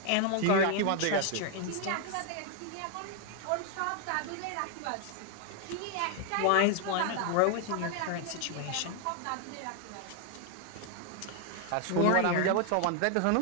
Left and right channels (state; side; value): different; both; correlation 0.00